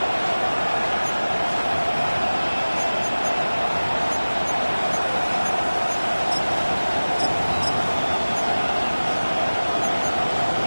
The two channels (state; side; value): inverted; both; correlation -1.00